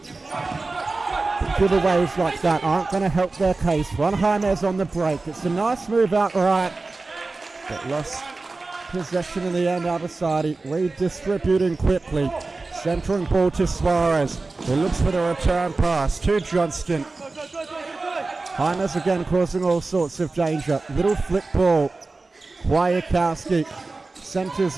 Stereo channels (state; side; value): quieter; left; 3.6 dB